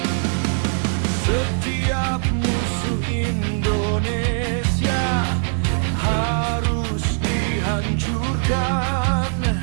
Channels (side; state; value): left; silent; 65 dB below the other